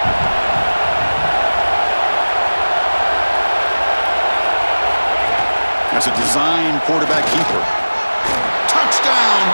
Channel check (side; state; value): both; inverted; correlation -1.00